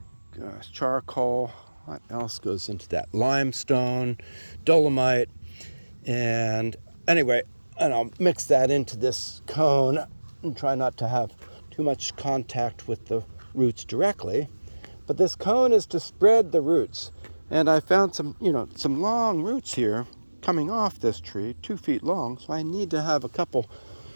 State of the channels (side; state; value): both; inverted; correlation -1.00